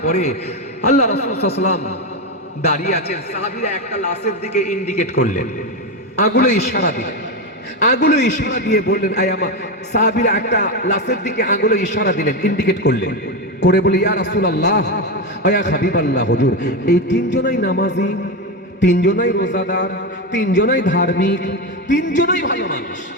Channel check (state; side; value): normal; both; correlation 0.13